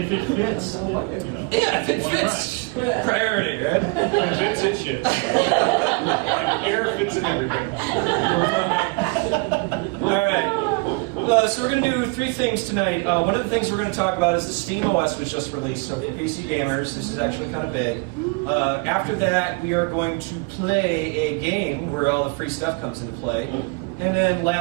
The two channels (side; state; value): left; quieter; 29.7 dB